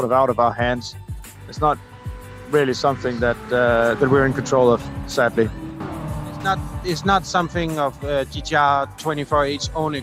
of out of our hands. It's not really something that that we're in control of, sadly. It's not something of GTR 24H own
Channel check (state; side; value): identical; both; correlation 1.00